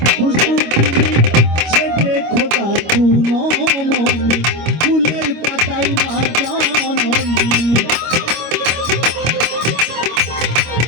খুশবু সে দেখো তাকুনো মনি ফুলের পাতায় মা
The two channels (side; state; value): left; late; 25 ms